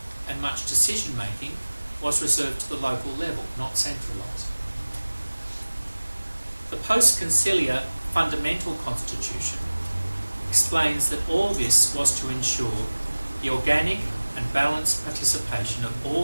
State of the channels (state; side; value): inverted; both; correlation -1.00